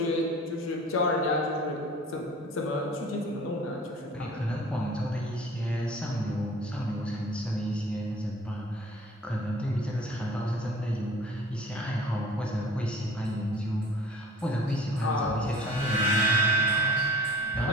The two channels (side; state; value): both; normal; correlation 0.45